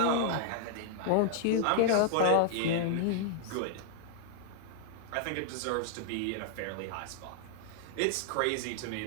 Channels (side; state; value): both; different; correlation -0.01